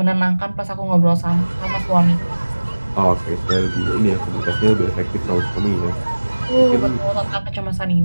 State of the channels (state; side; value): inverted; both; correlation -1.00